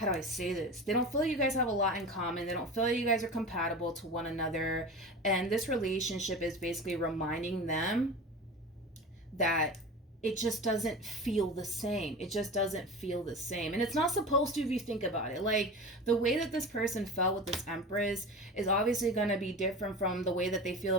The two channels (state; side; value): normal; both; correlation 0.31